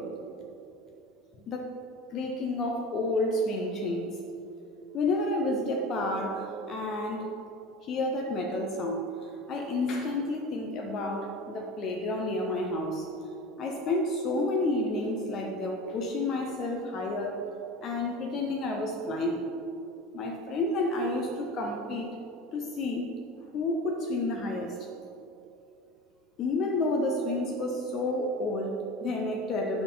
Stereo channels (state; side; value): normal; both; correlation 0.33